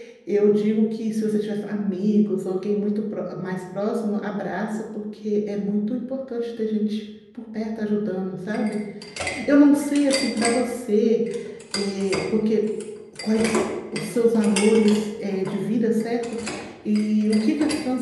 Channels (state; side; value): identical; both; correlation 1.00